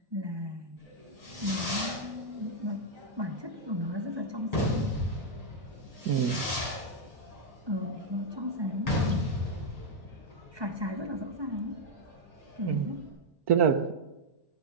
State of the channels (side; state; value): left; late; 1.1 ms